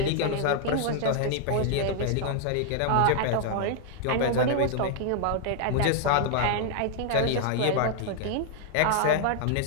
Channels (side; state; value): both; different; correlation 0.00